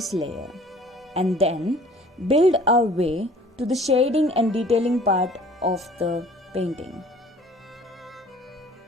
layer and then build our way to the shading and detailing part of the painting.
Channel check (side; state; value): both; normal; correlation 0.51